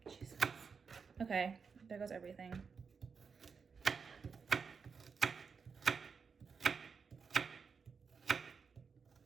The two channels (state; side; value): quieter; left; 5.6 dB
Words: Jesus. Okay, there goes everything.